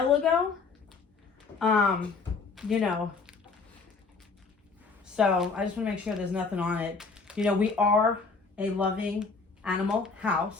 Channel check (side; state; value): right; quieter; 4.5 dB